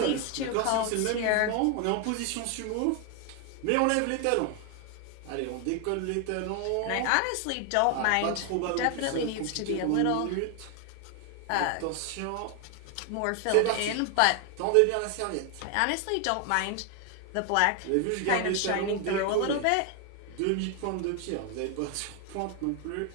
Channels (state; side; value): different; both; correlation 0.01